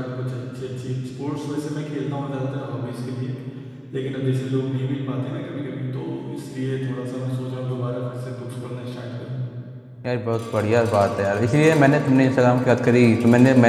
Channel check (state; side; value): identical; both; correlation 1.00